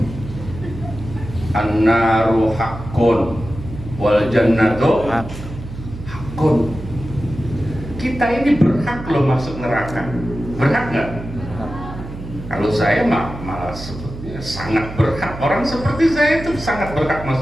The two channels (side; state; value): right; noise; hum, 11 dB below the sound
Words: An-naru haqqun wal jannatu haqqun. Kita ini berhak loh masuk neraka. Berhak nggak? Kalau saya malah sebetulnya sangat berhak. Orang seperti saya itu sangat berhak